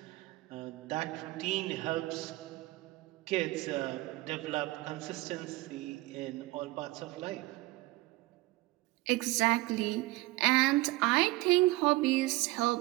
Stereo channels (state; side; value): quieter; left; 20.1 dB